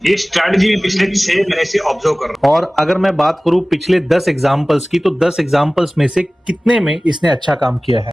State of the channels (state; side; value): normal; both; correlation 0.98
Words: ये स्ट्रैटेजी में पिछले 6 महीने से ऑब्जर्व कर रहा हूँ। और अगर मैं बात करूं पिछले 10 एग्जांपल्स की, तो 10 एग्जांपल्स में से कितने में इसने अच्छा काम किया है?